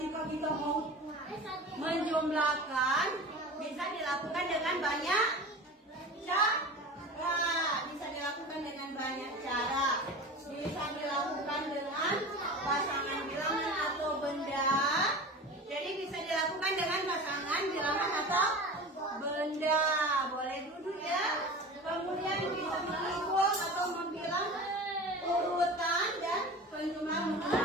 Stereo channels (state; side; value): normal; both; correlation 0.34